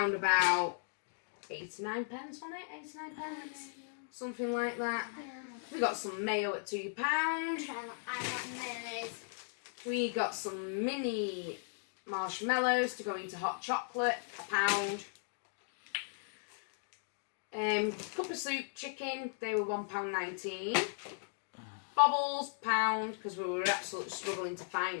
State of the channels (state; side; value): silent; right; digital silence